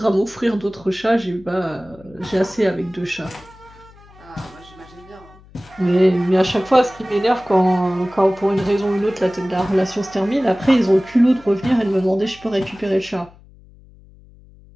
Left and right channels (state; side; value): noise; left; hum, 25 dB below the sound